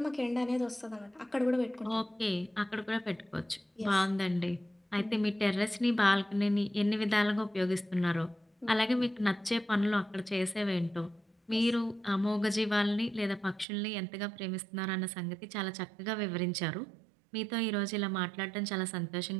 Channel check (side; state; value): left; drops out; at 13.7 s